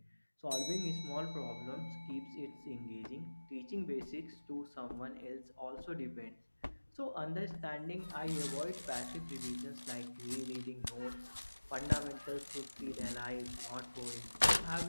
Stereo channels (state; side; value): inverted; both; correlation -1.00